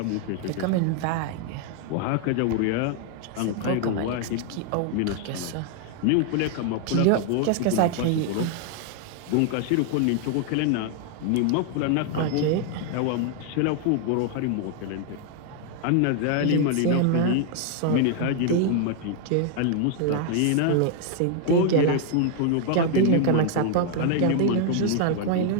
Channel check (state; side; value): different; both; correlation 0.00